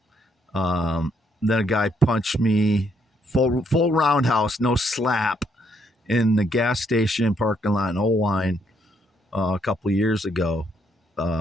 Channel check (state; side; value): normal; both; correlation 0.72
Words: Then a guy punched me, full roundhouse, no slap, in the gas station parking lot in Owine a couple of years ago.